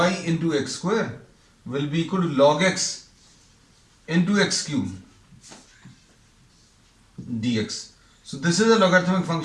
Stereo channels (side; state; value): both; identical; correlation 1.00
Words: into x square will be equal to log x into x cube dx. So this is a logarithmic